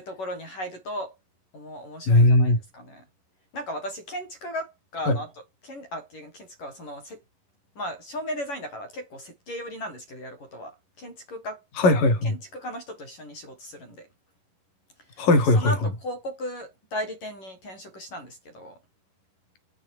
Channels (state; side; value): late; right; 11 ms